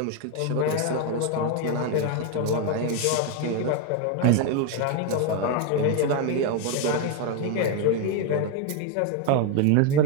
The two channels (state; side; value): different; both; correlation 0.01